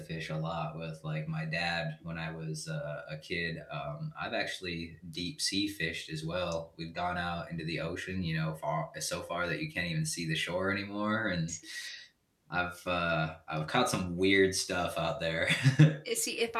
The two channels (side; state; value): both; identical; correlation 1.00